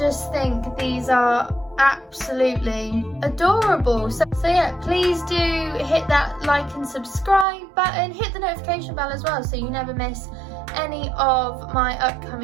think these are absolutely adorable. So yeah, please do hit that like and subscribe button, hit the notification bell as well so you never miss any of my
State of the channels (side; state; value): left; drops out; at 7.5 s